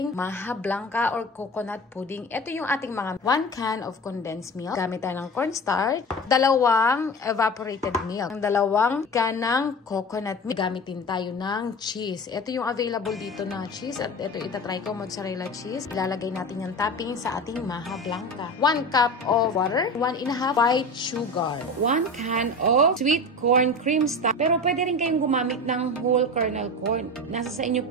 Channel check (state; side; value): normal; both; correlation 0.31